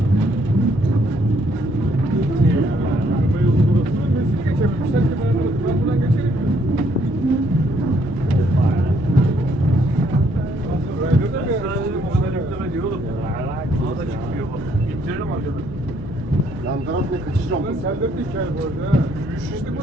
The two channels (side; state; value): left; noise; hum, 15 dB below the sound